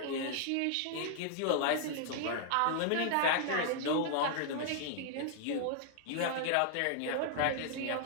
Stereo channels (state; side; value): different; both; correlation -0.01